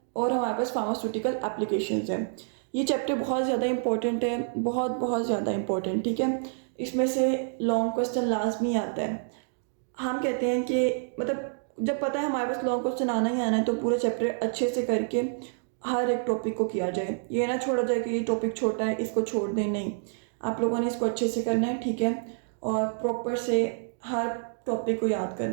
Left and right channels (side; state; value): left; silent; digital silence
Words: और हमारे पास फार्मास्यूटिकल एप्लीकेशंस हैं। ये चैप्टर बहुत ज़्यादा इंपॉर्टेंट है, बहुत ज़्यादा इंपॉर्टेंट। ठीक है, इसमें से लॉन्ग क्वेश्चन लाजमी आता है। हम कहते हैं कि मतलब जब पता है हमारे पास लॉन्ग क्वेश्चन आना ही आना है तो पूरा चैप्टर अच्छे से करके हर एक टॉपिक को किया जाए। ये ना छोड़ा जाए कि ये टॉपिक छोटा है इसको छोड़ दें, नहीं, आप लोगों ने इसको अच्छे से करना है। ठीक है, और प्रॉपर से हर टॉपिक को याद